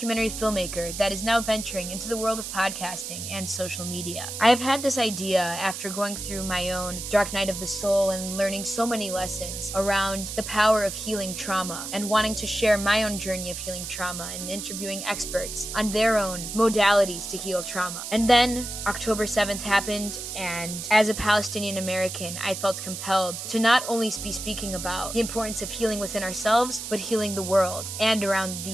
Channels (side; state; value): right; noise; hiss, 7 dB below the sound